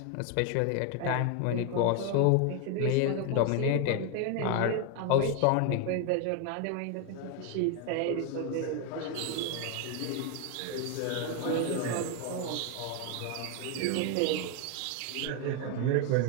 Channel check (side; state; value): both; different; correlation 0.01